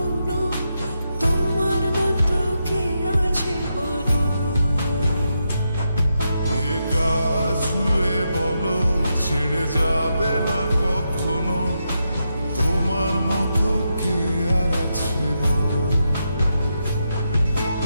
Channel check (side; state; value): both; inverted; correlation -0.84